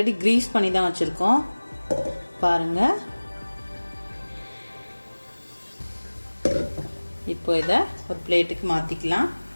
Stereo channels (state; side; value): inverted; both; correlation -1.00